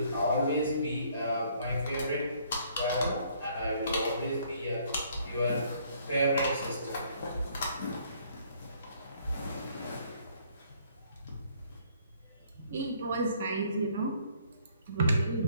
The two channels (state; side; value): inverted; both; correlation -0.63